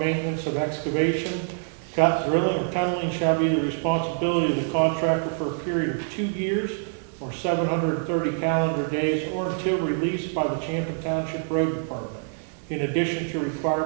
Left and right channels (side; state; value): left; silent; digital silence